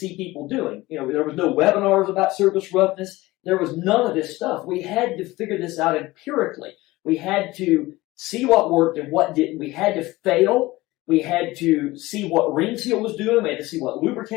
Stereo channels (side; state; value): right; quieter; 19.4 dB